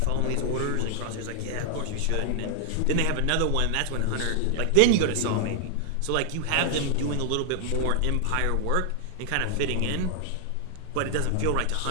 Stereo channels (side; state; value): both; different; correlation 0.00